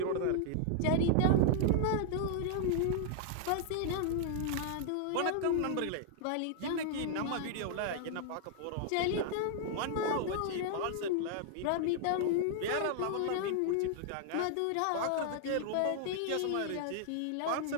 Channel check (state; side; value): different; both; correlation -0.01